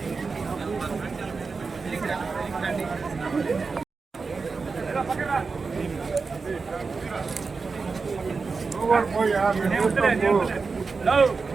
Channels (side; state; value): left; quieter; 4.6 dB